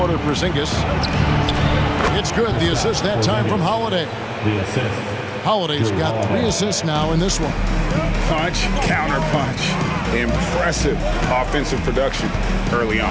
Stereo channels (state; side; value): identical; both; correlation 1.00